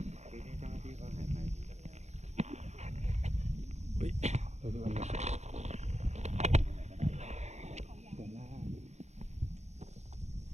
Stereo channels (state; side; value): late; left; 0.33 ms